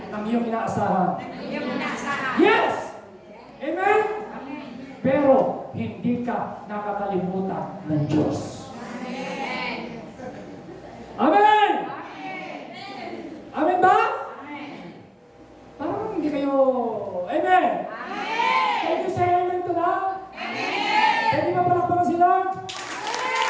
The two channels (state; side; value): identical; both; correlation 1.00